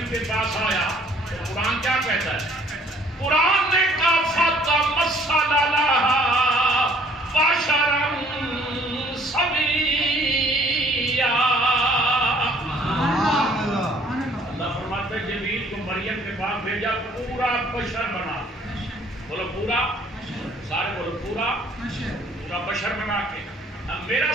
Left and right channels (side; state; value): both; normal; correlation 0.58